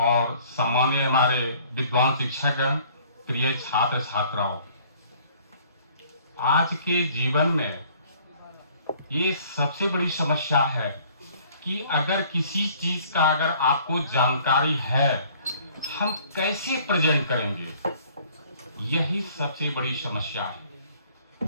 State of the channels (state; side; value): inverted; both; correlation -0.56